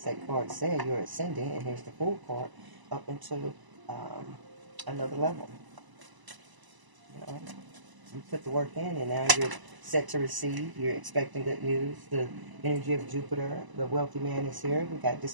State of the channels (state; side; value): late; left; 1.0 ms